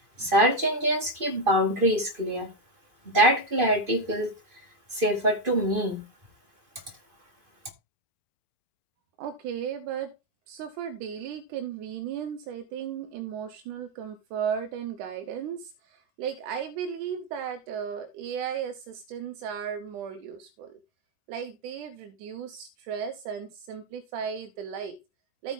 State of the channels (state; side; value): late; left; 2.5 ms